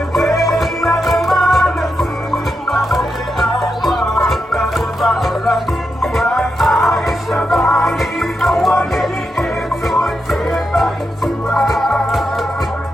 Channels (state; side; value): normal; both; correlation 0.85